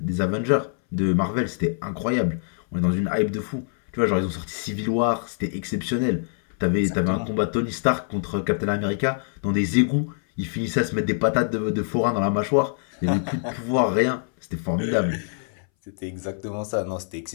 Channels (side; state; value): right; silent; 60 dB below the other